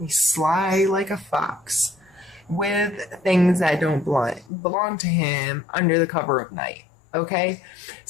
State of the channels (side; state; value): right; drops out; at 4.5 s